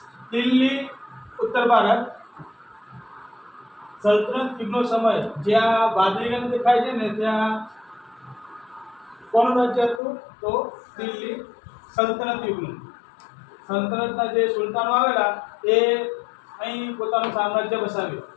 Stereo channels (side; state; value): right; drops out; at 10.0 s